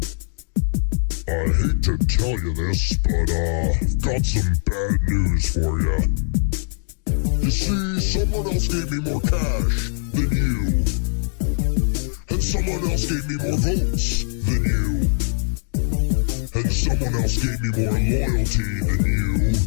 I hate to tell you this, but I've got some bad news for you. You see, someone else gave me more cash than you. And someone else gave me more votes than you. And someone else gave me more loyalty than you.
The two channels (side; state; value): right; silent; 65 dB below the other